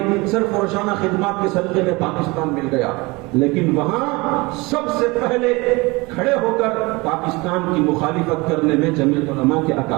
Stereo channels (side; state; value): left; quieter; 24.2 dB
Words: صرف روزانہ خدمات کے صدقے میں پاکستان مل گیا۔ لیکن وہاں سب سے پہلے کھڑے ہو کر پاکستان کی مخالفت کرنے میں جمعیت علماء کے